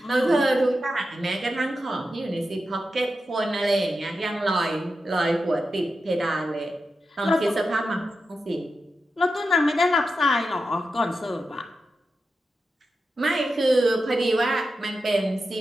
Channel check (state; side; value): normal; both; correlation 0.89